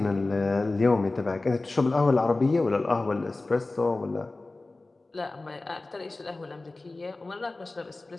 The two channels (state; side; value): quieter; right; 3.1 dB